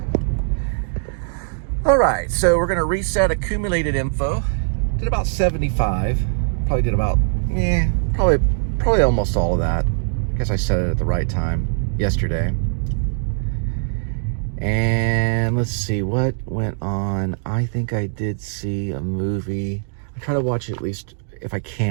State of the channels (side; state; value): left; silent; 65 dB below the other